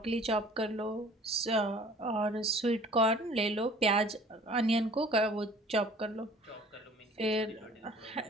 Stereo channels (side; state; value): both; normal; correlation 0.50